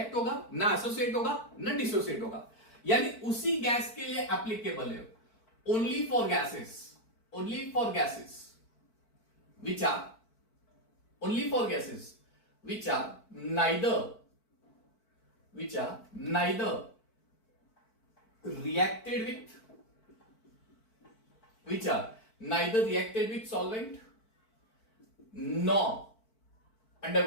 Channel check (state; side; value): late; right; 4.5 ms